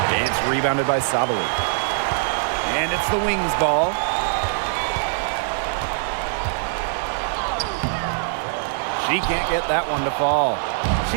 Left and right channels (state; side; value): silent; left; digital silence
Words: It's rebounded by Sabally. And it's the Wings ball. She can't get that one to fall.